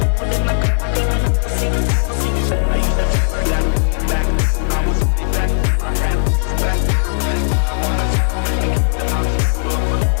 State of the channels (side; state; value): right; silent; digital silence